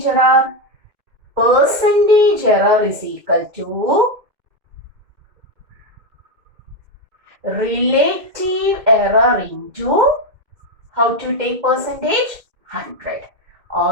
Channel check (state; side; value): late; left; 2.1 ms